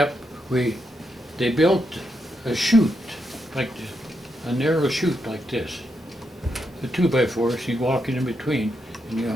they built a chute, like this, a narrow chute like this. The 2x4s, you walk in between, and you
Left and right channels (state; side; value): normal; both; correlation 0.82